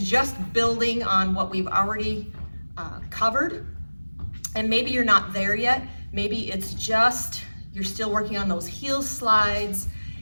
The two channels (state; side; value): inverted; both; correlation -1.00